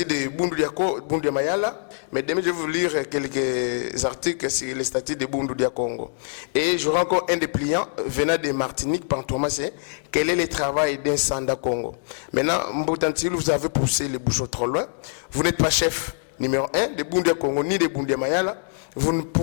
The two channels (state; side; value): silent; right; 62 dB below the other